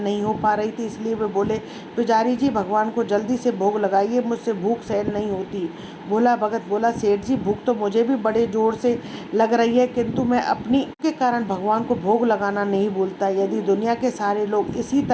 हो पा रही थी, इसलिए वे बोले, पुजारी जी भगवान को जल्दी से भोग लगाइए, मुझसे भूख सहन नहीं होती। भोला भगत बोला, सेठ जी भूख तो मुझे भी बड़े जोर से लग रही है, किंतु मैं अपनी के कारण भगवान को भोग लगाना नहीं भूलता। यदि दुनिया के सारे लोग इसी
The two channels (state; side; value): identical; both; correlation 1.00